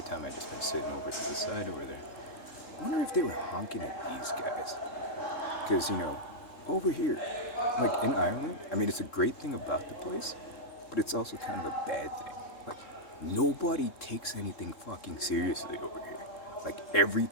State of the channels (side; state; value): right; late; 3.7 ms